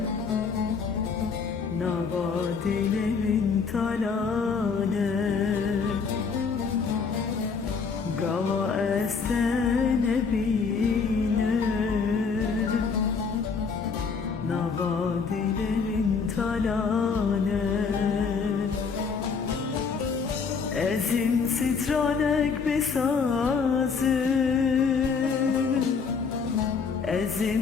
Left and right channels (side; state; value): right; quieter; 5.4 dB